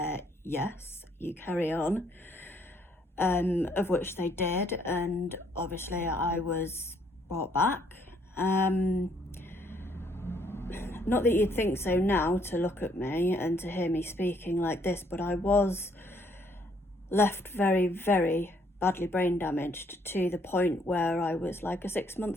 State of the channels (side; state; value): both; normal; correlation 0.67